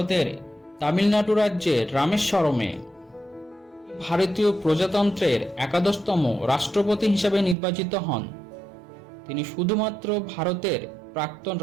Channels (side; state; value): left; drops out; at 7.6 s